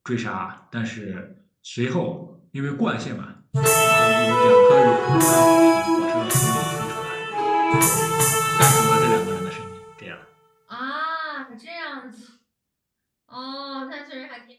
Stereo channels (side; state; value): both; identical; correlation 1.00